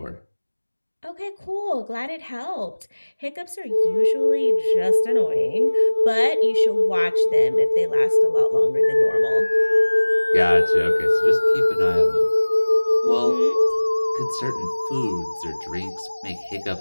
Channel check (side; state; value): both; inverted; correlation -1.00